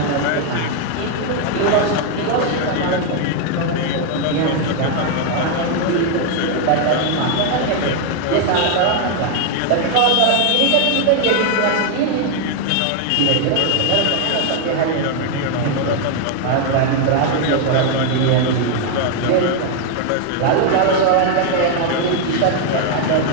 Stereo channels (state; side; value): different; both; correlation 0.00